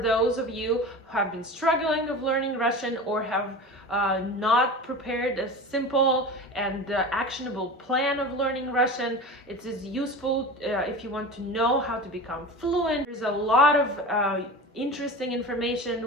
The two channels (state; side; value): normal; both; correlation 0.32